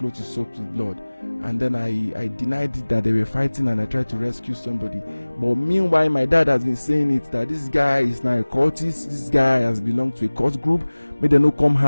is soaked with blood? And then I denied it, that they were fighting, and I tried to rescue somebody. But meanwhile, my dad has been saying it, that this guy is now a cultist, this guy has belonged to a cult group. May they no come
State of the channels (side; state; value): both; inverted; correlation -1.00